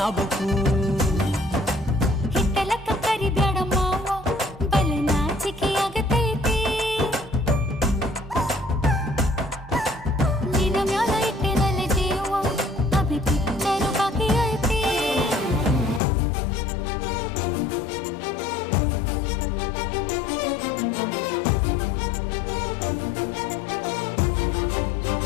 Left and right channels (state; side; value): drops out; right; at 16.0 s